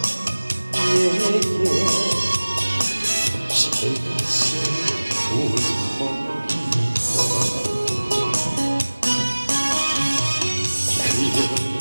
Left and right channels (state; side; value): inverted; both; correlation -1.00